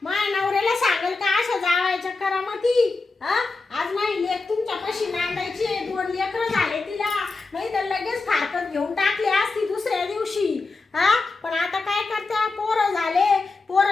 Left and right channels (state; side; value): quieter; right; 3.8 dB